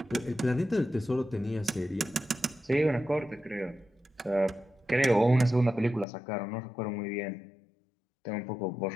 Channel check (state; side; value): drops out; right; at 6.1 s